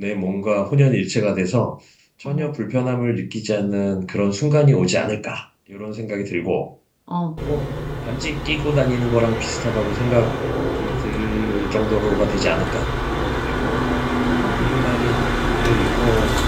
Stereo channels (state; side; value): identical; both; correlation 1.00